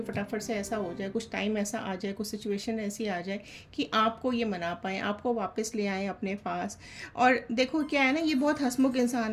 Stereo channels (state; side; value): identical; both; correlation 1.00